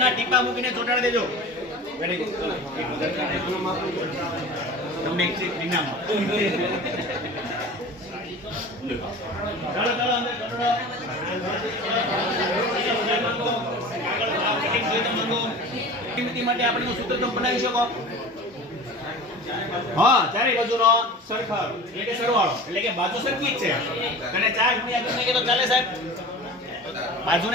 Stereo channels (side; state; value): both; normal; correlation 0.36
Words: ટીપા મૂકીને ચોટાડી દેજો. Very good. તમને એક ચીજ ઇનામ. ચાલો ચાલો અંદર ચોટાડો. પરિમિતિ માટે આપણે સૂત્ર તમે બનાવી શકો. હા, ચારે બાજુનો સરખાવો એટલે કે સરવાળો એટલે કે બાજુ સરખી જ છે અને 4 ગુણ્યા કરી નાખીએ તો ચાલે સાહેબ?